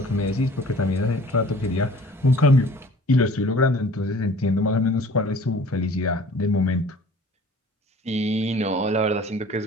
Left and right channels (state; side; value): normal; both; correlation 0.49